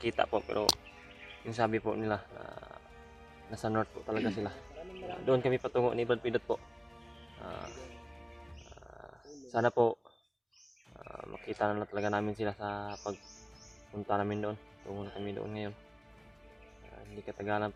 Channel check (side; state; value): both; identical; correlation 1.00